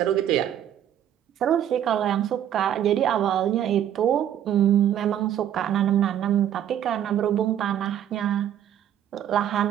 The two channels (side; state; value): left; quieter; 10.4 dB